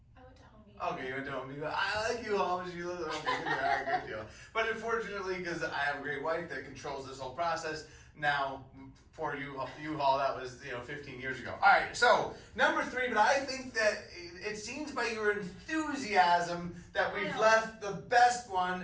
I went to Home Depot. Okay, you went to Home Depot. I like you all, but you live at Home Depot. Yeah, good deal. But unfortunately, because I have a great wife that controls this whole process, now for U-Haul, that was 15 years ago. All right, so number 3, but I think that it seems by your enthusiasm that I we've know. left the best one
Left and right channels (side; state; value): both; identical; correlation 1.00